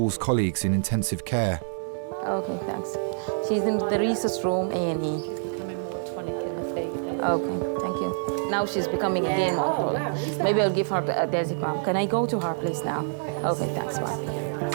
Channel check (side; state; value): left; silent; digital silence